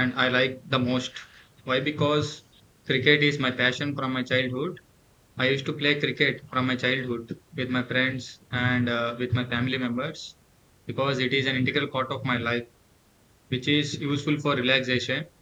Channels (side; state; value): both; identical; correlation 1.00